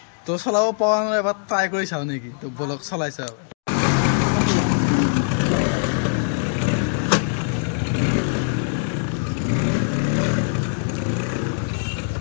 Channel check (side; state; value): right; silent; digital silence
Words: তো চলাব পৰা নাই এবাৰ ট্ৰাই কৰি চাওঁ নেকি তো বলক চলাই চাওঁ